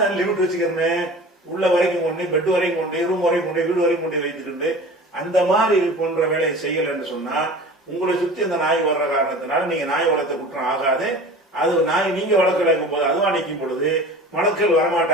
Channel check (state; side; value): normal; both; correlation 0.39